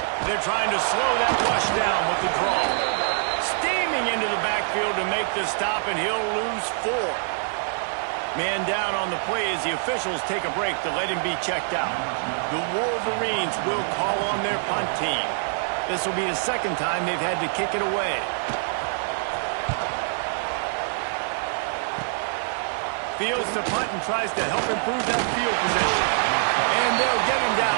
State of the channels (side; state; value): left; silent; digital silence